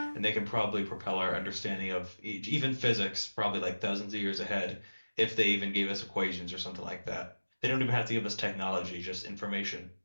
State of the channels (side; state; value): both; inverted; correlation -1.00